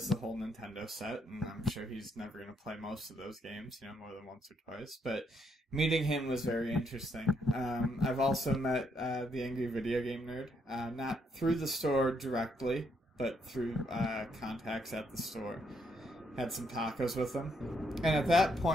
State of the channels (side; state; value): both; normal; correlation 0.74